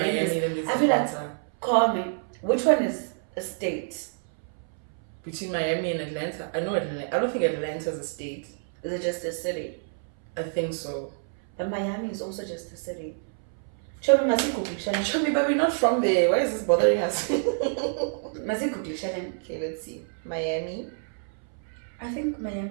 and I feel like, call me. Which one is a state? Between Miami and Atlanta. I know Atlanta. I don't think Atlanta's a state. Is it just a city? I think so. But Miami is also just a city. Show me, but we're not from there. Why is this bothering us? Okay, let's see. Miami. I think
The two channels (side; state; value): left; silent; 60 dB below the other